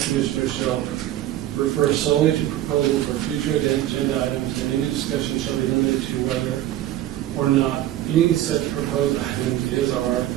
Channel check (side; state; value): left; quieter; 13.4 dB